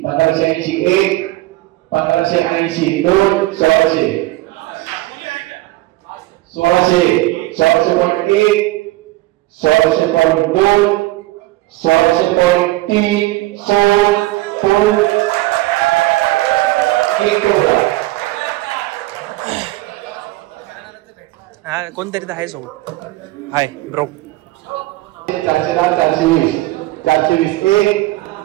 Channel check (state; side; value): quieter; left; 18.6 dB